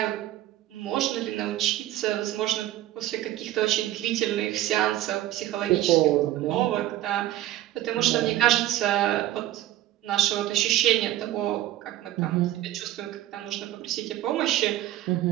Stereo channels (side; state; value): left; quieter; 14.1 dB